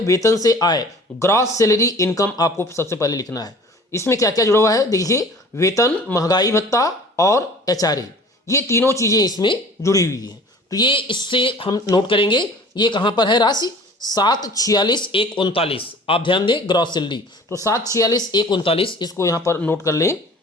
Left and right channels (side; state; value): both; normal; correlation 0.46